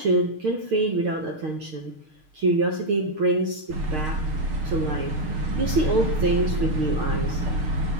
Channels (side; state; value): left; late; 6.5 ms